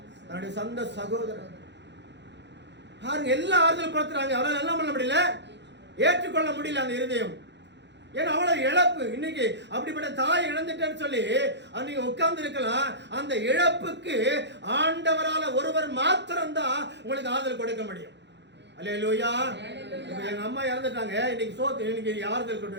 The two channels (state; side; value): late; left; 0.51 ms